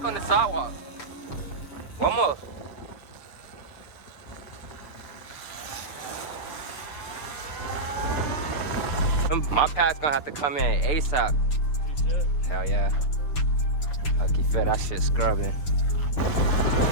on the sidewalk. One more. My pad's gonna have to come in ASAP. You should. Hell yeah. Lucky fit, that shit scrubbing.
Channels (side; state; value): right; late; 6.8 ms